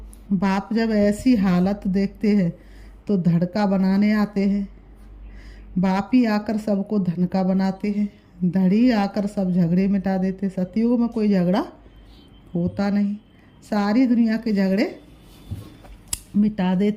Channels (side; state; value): both; identical; correlation 1.00